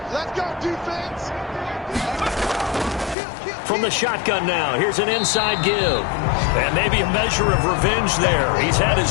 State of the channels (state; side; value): drops out; right; at 3.2 s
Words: Let's go, defense. From the shotgun now, here's an inside give. And maybe a measure of revenge there. He's had